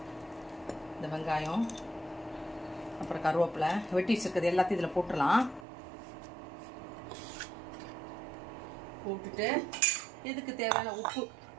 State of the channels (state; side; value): drops out; left; at 5.7 s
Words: இந்த வெங்காயம், அப்புறம் கருவேப்பிலை வெட்டி வச்சிருக்கிறது எல்லாத்தையும் இதுல போட்டுடலாம். போட்டுட்டு இதுக்கு தேவையான உப்பு,